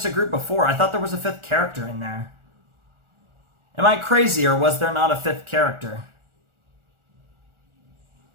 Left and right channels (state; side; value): late; left; 1.4 ms